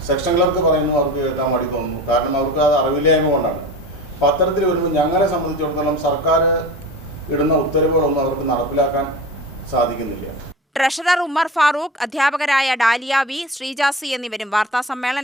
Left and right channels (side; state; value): both; normal; correlation 0.32